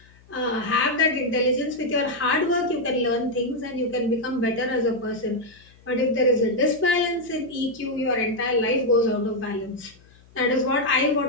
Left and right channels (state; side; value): noise; left; hum, 27 dB below the sound